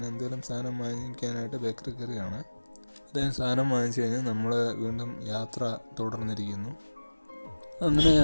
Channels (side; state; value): both; inverted; correlation -1.00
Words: എന്തെങ്കിലും സാധനം വാങ്ങിക്കാനായിട്ട് ബേക്കറി കയറിയാണ്. അദ്ദേഹം സാധനം വാങ്ങിച്ചു കഴിഞ്ഞാൽ നമ്മൾ വീണ്ടും യാത്ര തുടർന്നിരിക്കുന്നു. അങ്ങനെ